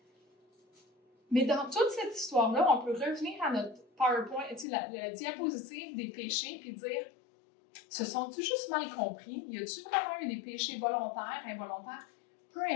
Mais dans toute cette histoire-là, on peut revenir à notre PowerPoint, la diapositive des péchés, puis dire, se sont-ils juste mal compris? Y a-t-il vraiment eu des péchés volontaires, involontaires? Peu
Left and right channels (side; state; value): right; drops out; at 4.7 s